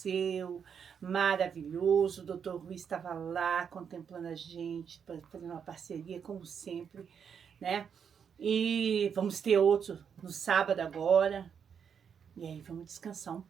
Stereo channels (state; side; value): quieter; left; 7.3 dB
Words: Maravilhoso, o Dr. Rui estava lá contemplando a gente, fazendo uma parceria, como sempre, né? E vamos ter outro no sábado agora. E aí vamos descansar um